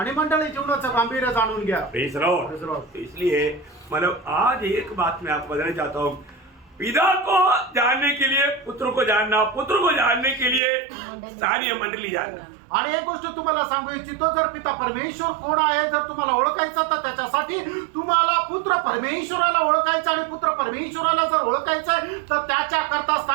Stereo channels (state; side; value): drops out; left; at 10.6 s